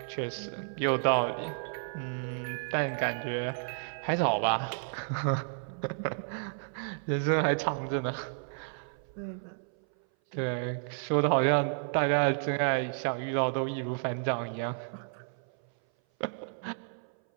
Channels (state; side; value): silent; left; 57 dB below the other